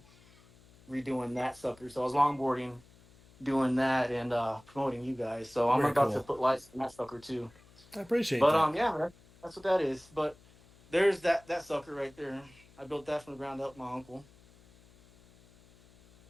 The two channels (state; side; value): noise; left; hum, 27 dB below the sound